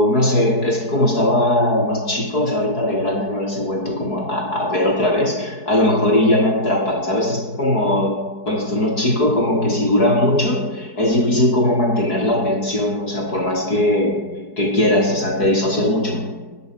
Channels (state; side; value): late; right; 4.7 ms